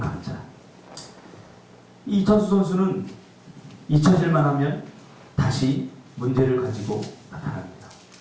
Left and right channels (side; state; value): both; identical; correlation 1.00